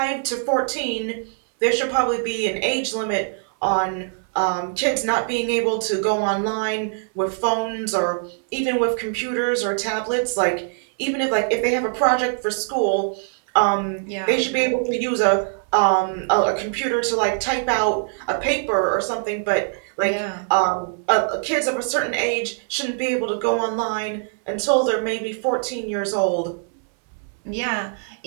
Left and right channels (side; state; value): left; silent; 64 dB below the other